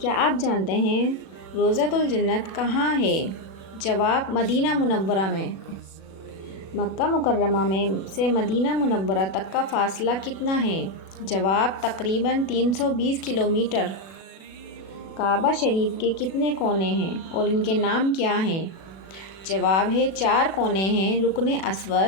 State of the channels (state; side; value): late; right; 36 ms